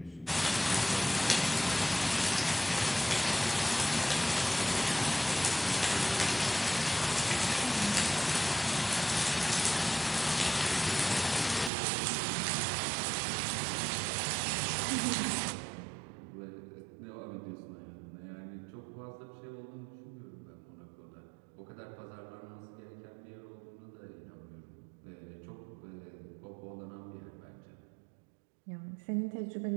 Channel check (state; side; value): drops out; left; at 11.7 s